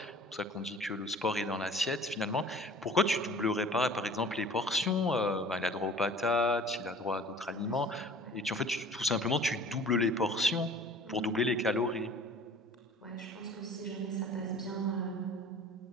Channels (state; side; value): normal; both; correlation 0.47